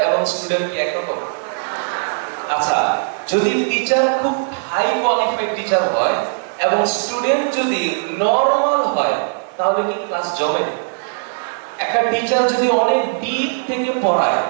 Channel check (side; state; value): left; silent; digital silence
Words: এবং স্টুডেন্ট কি একরকম? আচ্ছা, যদি টিচার খুব হাই কোয়ালিফাইড টিচার হয় এবং স্টুডেন্ট যদি নরমাল হয়, তাহলে কি ক্লাস জমে? একটা টিচার যদি অনেক ডিপ থেকে পড়ায়